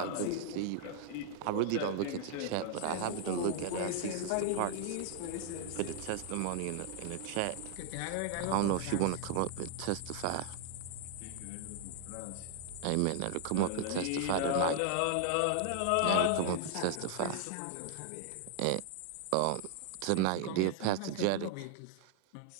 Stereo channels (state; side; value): different; both; correlation 0.00